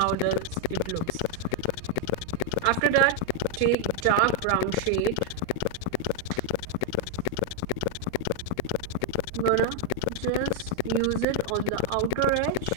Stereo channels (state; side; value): different; both; correlation 0.01